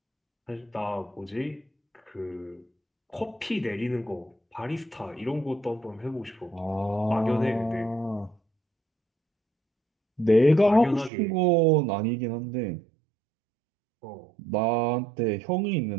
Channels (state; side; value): drops out; left; at 11.1 s